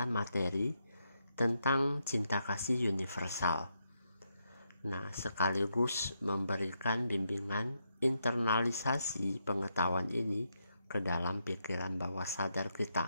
materi tentang cinta kasih universal. Nah, sekaligus memberikan bimbingan internalisasi pengetahuan ini ke dalam pikiran bawah sadar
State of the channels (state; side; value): inverted; both; correlation -0.81